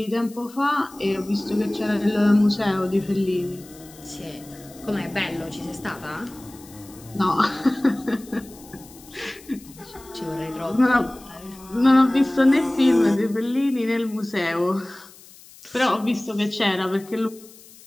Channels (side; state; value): left; noise; hiss, 22 dB below the sound